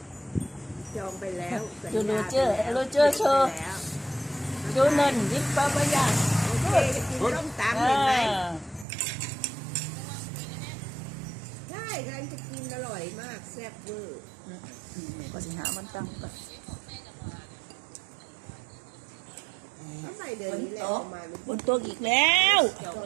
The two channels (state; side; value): drops out; left; at 8.8 s